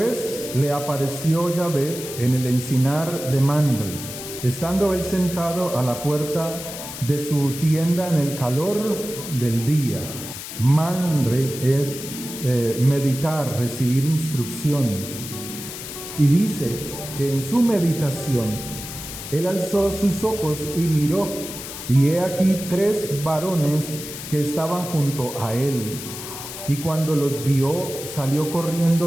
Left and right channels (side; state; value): left; noise; hiss, 10 dB below the sound